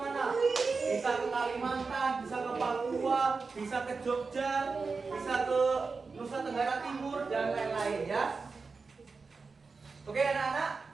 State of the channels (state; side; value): quieter; left; 4.5 dB